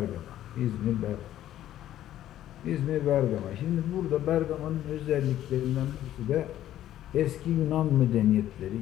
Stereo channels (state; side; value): quieter; right; 12.5 dB